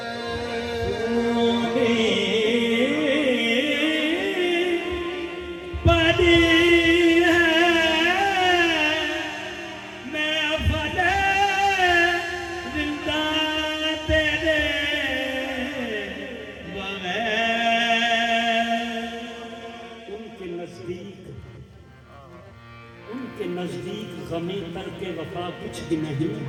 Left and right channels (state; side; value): identical; both; correlation 1.00